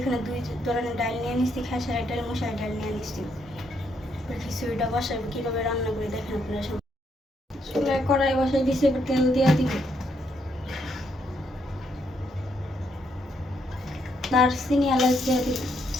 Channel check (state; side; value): normal; both; correlation 0.75